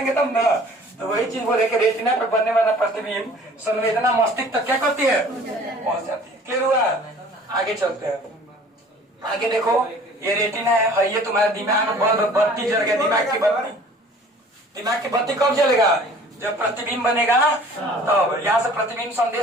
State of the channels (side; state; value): both; normal; correlation 0.49